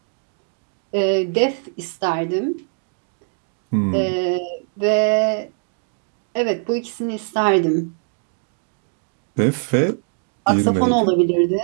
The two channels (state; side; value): silent; left; 59 dB below the other